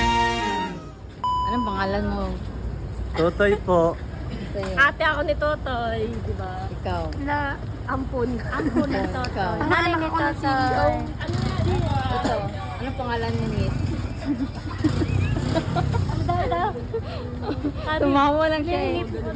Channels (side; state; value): both; identical; correlation 1.00